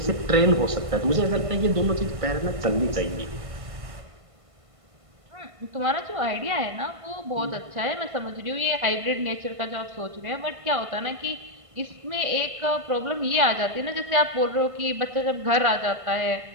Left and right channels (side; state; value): left; late; 1.5 ms